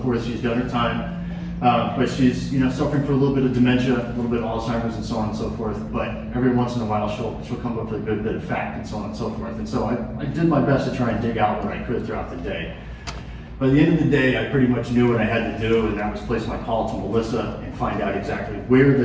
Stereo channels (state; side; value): identical; both; correlation 1.00